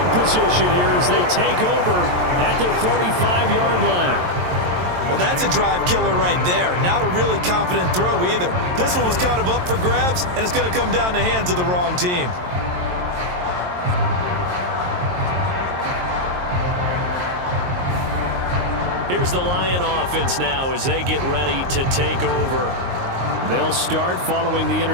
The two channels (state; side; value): late; left; 22 ms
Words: position here as they take over at their 45-yard line. Well, that's a drive killer right there. Not a really confident throw either. This one was kind of up for grabs, and it's going to come down the hands of the wrong team. Here's the Lion offense now as they get ready to take over. They'll start following the